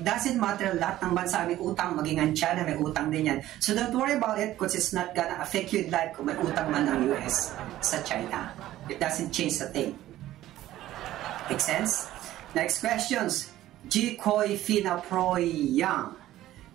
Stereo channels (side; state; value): left; quieter; 14.3 dB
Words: doesn't matter. Lahat ng bansa may utang, maging ang China may utang din yan. So don't worry about it because it's not gonna affect you in life kung may utang man ng US sa China. It doesn't change a thing. Make sense? Next questions. G. Koi Fina Proy Yang.